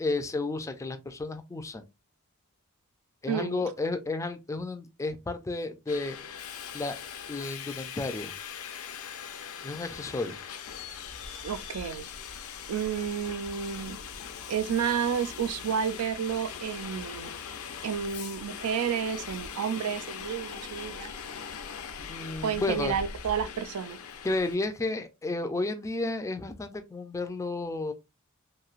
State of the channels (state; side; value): normal; both; correlation 0.23